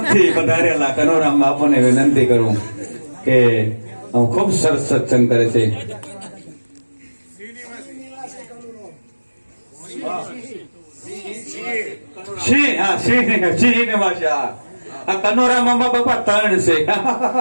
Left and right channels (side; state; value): both; inverted; correlation -1.00